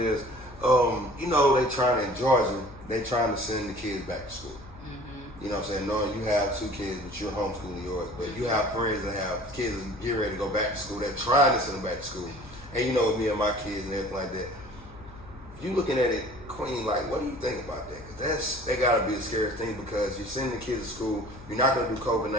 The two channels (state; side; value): noise; left; hum, 19 dB below the sound